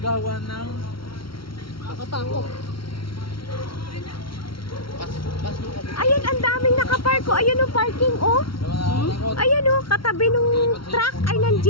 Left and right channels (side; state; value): right; late; 0.74 ms